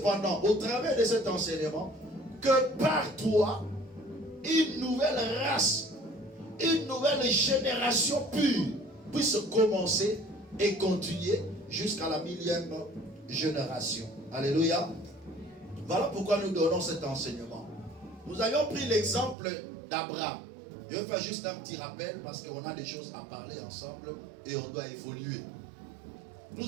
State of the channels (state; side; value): drops out; left; at 19.4 s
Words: au travers de cet enseignement, que par toi, une nouvelle race, une nouvelle génération pure puisse commencer et continuer jusqu'à la 1000e génération. Alléluia. Voilà pourquoi nous donnons cet enseignement. Nous avions pris l'exemple d'Abraham. Je vais faire juste un petit rappel parce qu'on a des choses à parler ensemble et on doit évoluer.